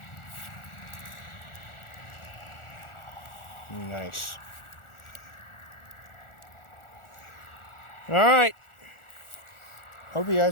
Nice. Alright. Hope you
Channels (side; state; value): right; late; 1.4 ms